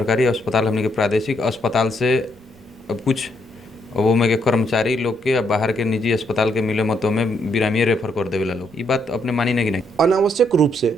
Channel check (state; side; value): noise; right; rumble, 28 dB below the sound